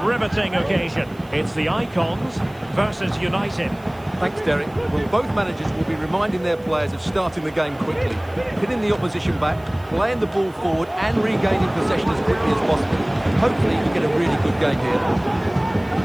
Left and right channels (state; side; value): noise; right; hiss, 28 dB below the sound